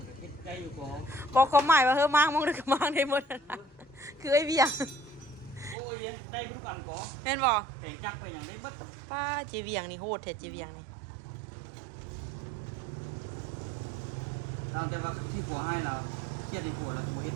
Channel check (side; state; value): left; drops out; at 5.8 s